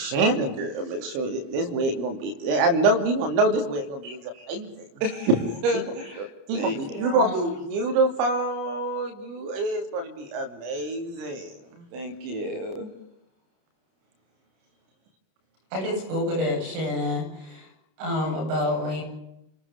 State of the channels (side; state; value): left; late; 30 ms